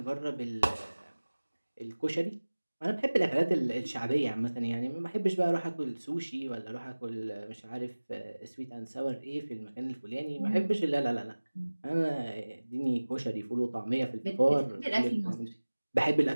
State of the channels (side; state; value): both; inverted; correlation -1.00